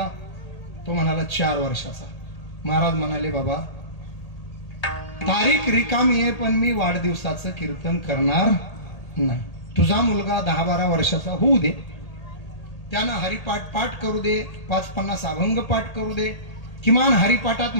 तो म्हणाला 4 वर्षाचा. महाराज म्हणाले, बाबा तारीख रिकामी आहे, पण मी वाढदिवसाचं कीर्तन करणार नाही. तुझा मुलगा 10-12 वर्षाचा होऊ दे, त्यानं हरिपाठ पाठ करू दे, 5-50 अभंग पाठ करू दे, किमान हरिपाठात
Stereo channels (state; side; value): late; right; 1.8 ms